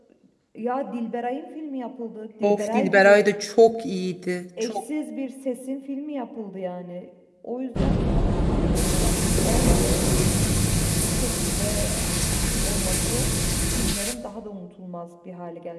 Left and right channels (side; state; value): both; identical; correlation 1.00